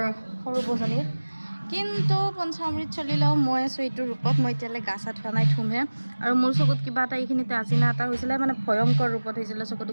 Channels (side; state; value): both; inverted; correlation -1.00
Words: সৰু বজনীৰ কিন্তু পঞ্চামৃত চলিলেও মই আছোঁ এইটো ৰূপত মই এতিয়ালৈ গা চা ধোৱা নাই ধুমহে আৰু মোৰ চকুত কিবা এটা এইখিনিতে আজিনা এটা হৈছিলে মানে ভয়ংকৰ ৰূপত হৈছিলে